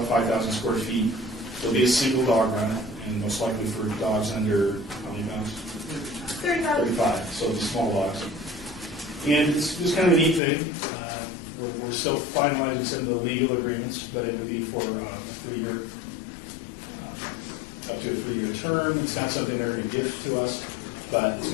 5,000 square feet. There'll be a single dog run, and most likely for dogs under how many pounds? 35. So it'll be small dogs. And it's just kind of a neat thing. We're still finalizing some of the legal agreements, but it would be for a 3-year, up to a 3-year term. It's not something they're going to give to us, but it's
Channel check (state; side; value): drops out; right; at 10.4 s